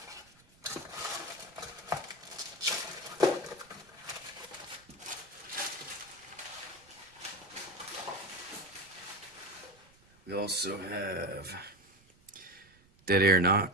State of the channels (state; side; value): noise; right; rumble, 29 dB below the sound